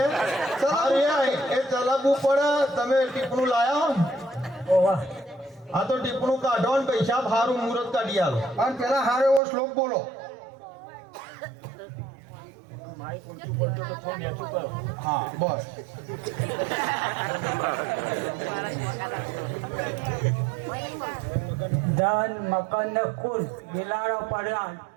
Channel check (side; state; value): left; drops out; at 9.4 s